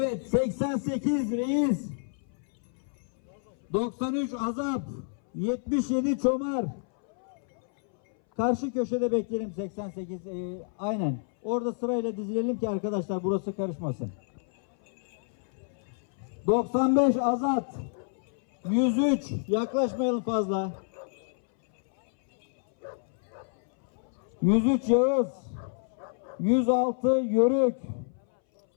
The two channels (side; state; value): right; silent; 59 dB below the other